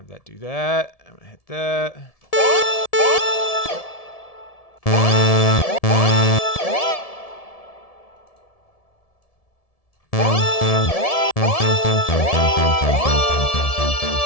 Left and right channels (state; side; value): late; right; 1.7 ms